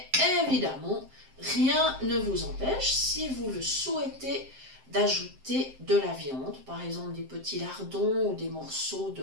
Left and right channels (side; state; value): left; late; 7.6 ms